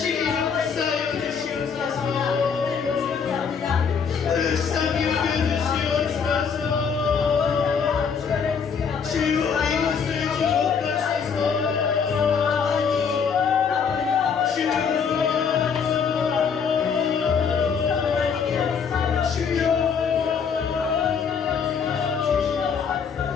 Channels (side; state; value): right; quieter; 6.4 dB